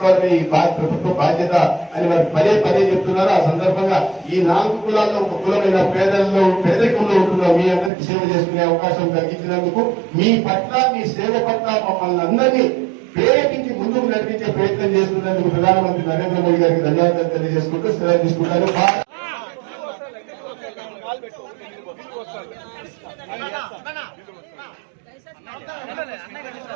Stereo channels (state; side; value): drops out; left; at 7.9 s